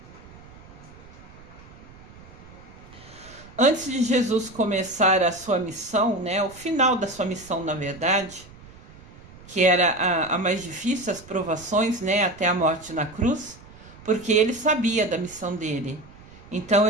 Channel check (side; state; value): right; noise; rumble, 21 dB below the sound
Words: Antes de Jesus começar a sua missão, o final da sua missão, na verdade, que era a mais difícil, as provações, até a morte na cruz, porque ele sabia da missão dele. Então